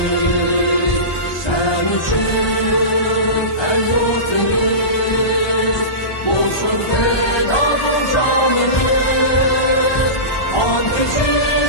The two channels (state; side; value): late; right; 1.2 ms